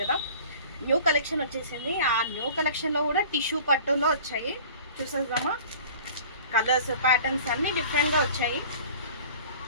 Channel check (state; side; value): inverted; both; correlation -0.44